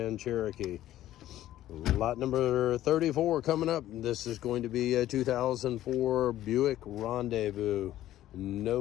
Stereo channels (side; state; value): right; quieter; 13.5 dB